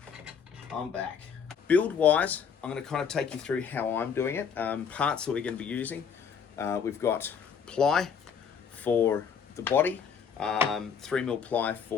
I'm back. Build-wise, I'm going to kind of take you through how I'm doing it. Parts that we're going to be using. We've got ply for the body, 3mm ply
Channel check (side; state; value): right; quieter; 6.7 dB